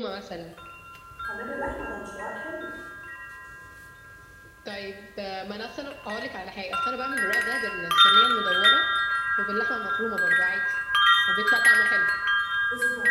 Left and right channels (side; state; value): both; identical; correlation 1.00